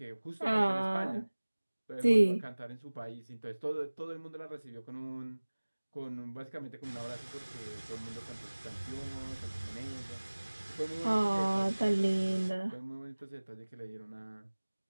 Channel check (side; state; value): both; inverted; correlation -1.00